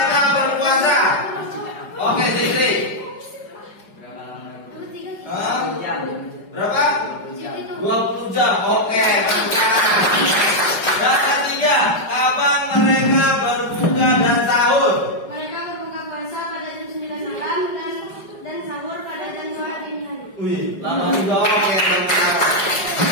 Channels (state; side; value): late; right; 5.2 ms